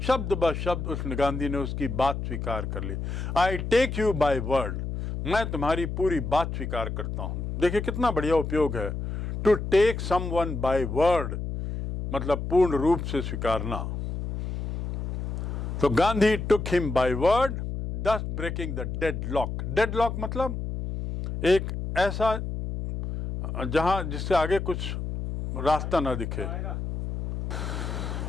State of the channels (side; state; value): left; noise; hum, 4 dB below the sound